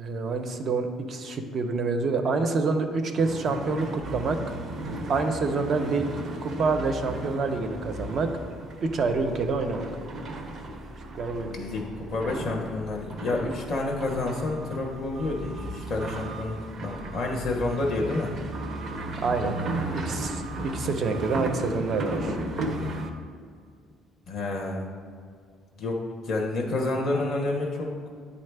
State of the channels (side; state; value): both; normal; correlation 0.67